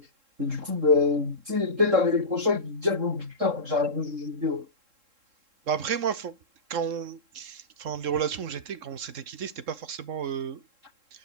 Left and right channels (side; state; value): left; late; 3.7 ms